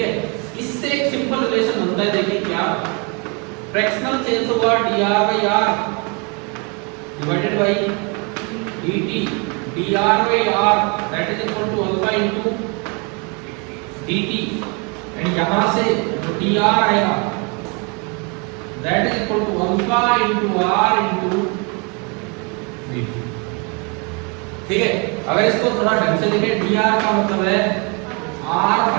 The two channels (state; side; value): quieter; left; 32.8 dB